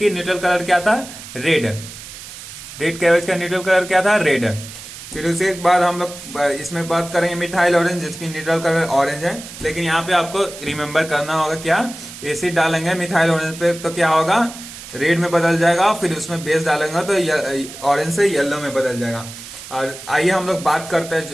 न्यूट्रल कलर क्या था? रेड कैबेज का न्यूट्रल कलर क्या था? रेड। फिर उसके बाद हम लोग इसमें बात करेंगे मिथाइल ऑरेंज, जिसकी न्यूट्रल कलर ऑरेंज है। लेकिन यहाँ पे आपको रिमेंबर करना होगा क्या? एसिड डालेंगे मिथाइल ऑरेंज पे तो क्या होगा? रेड में बदल जाएगा। फिर उसमें बेस डालेंगे तो ऑरेंज से येलो में बदल जाएगा। और आइए हम लोग बात करते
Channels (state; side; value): noise; right; hiss, 14 dB below the sound